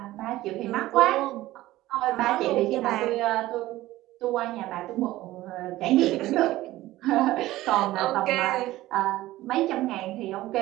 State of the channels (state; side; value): quieter; left; 16.4 dB